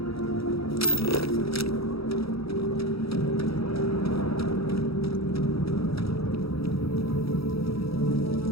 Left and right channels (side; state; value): right; late; 0.76 ms